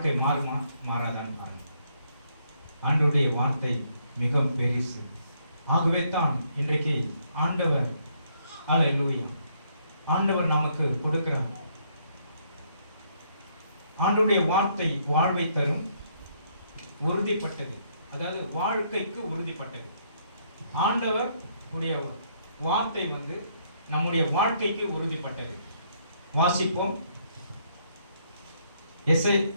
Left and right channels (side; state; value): both; inverted; correlation -0.70